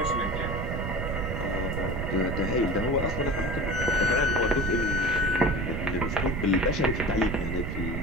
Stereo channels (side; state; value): right; noise; rumble, 3 dB below the sound